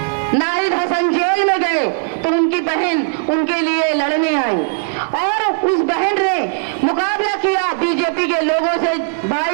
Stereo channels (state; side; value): silent; left; digital silence